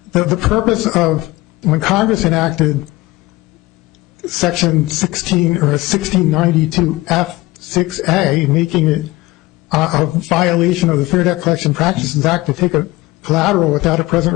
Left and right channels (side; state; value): right; quieter; 19.6 dB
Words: The purpose of when Congress enacted Section 1692F6A, making it a violation of the Fair Debt Collection Practices Act to take a collateral without a present